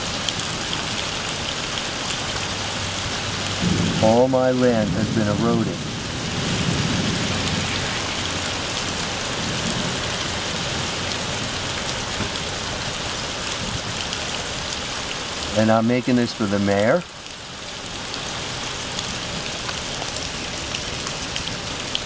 All my land has been eroded. And I'm making this for the mayor.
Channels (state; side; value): identical; both; correlation 1.00